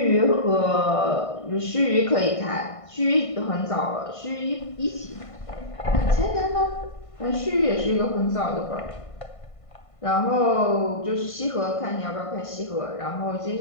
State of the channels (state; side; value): late; right; 1.5 ms